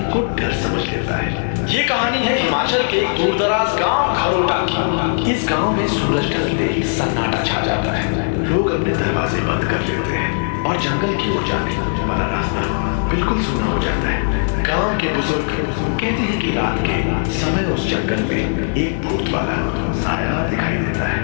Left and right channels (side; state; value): right; silent; digital silence